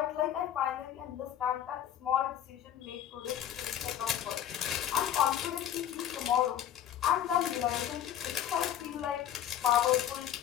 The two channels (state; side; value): quieter; right; 10.6 dB